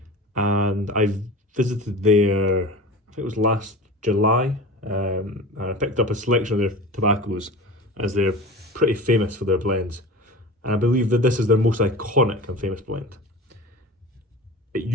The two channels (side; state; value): both; normal; correlation 0.34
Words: and I visited there, I think it was last July, and I picked up a selection of their tobaccos as they're pretty famous for their blends. And I believe that this is their most iconic and famous blend. It